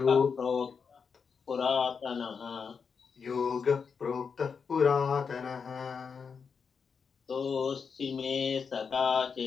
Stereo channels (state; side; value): quieter; right; 5.9 dB